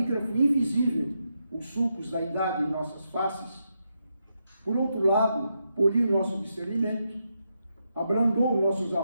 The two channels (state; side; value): inverted; both; correlation -0.83